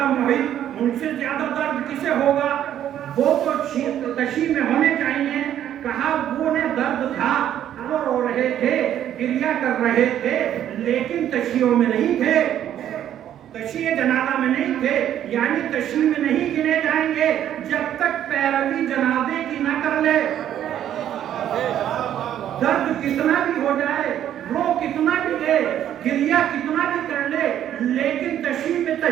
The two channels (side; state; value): left; quieter; 10.8 dB